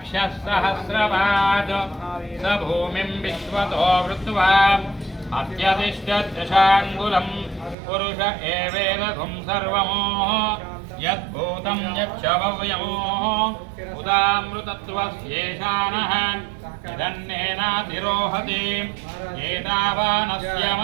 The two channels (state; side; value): drops out; left; at 7.8 s